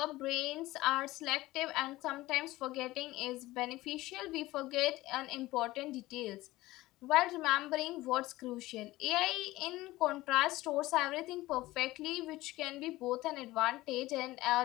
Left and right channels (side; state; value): right; quieter; 18.1 dB